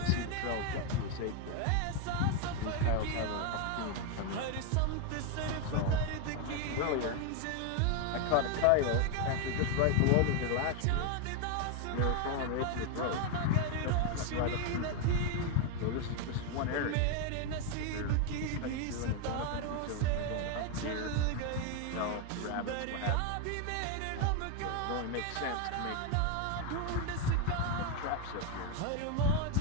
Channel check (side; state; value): both; different; correlation 0.01